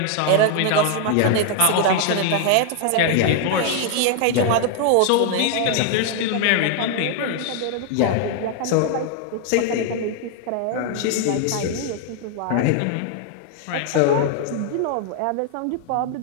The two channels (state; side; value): different; both; correlation 0.00